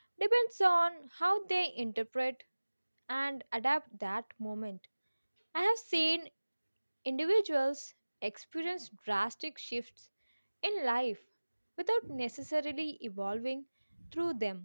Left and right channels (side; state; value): both; inverted; correlation -1.00